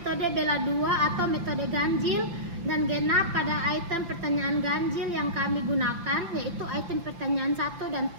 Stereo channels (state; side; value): late; left; 5.9 ms